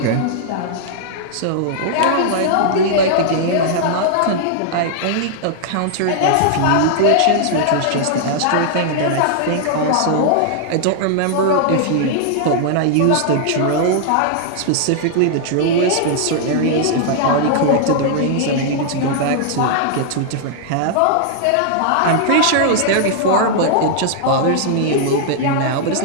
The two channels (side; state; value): both; different; correlation -0.01